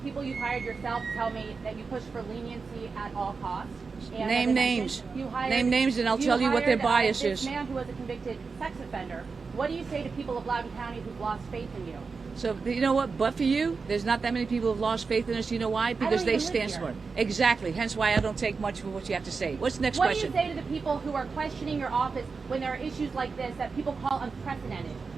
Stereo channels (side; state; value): left; quieter; 4.7 dB